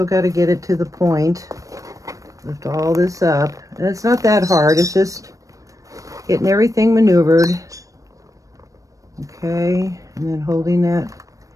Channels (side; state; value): left; late; 0.16 ms